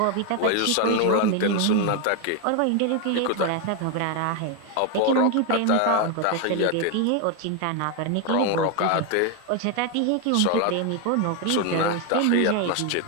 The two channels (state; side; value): different; both; correlation 0.01